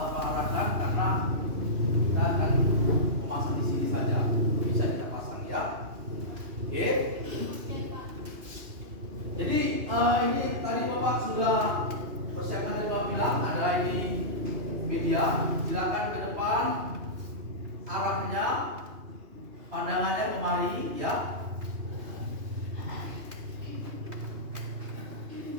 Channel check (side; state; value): left; late; 2.8 ms